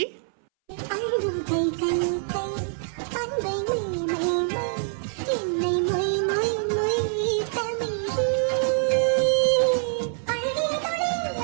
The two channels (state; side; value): silent; left; 62 dB below the other